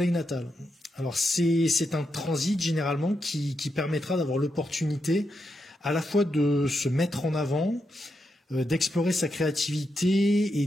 natal. Alors c'est un transit généralement qui permettra d'avoir l'opportunité à la fois de se mettre en avant, d'explorer sa créativité et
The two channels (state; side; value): normal; both; correlation 0.84